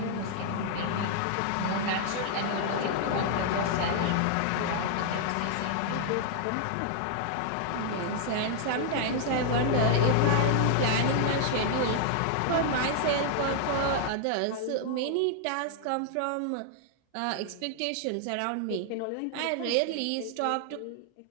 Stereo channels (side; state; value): both; different; correlation -0.01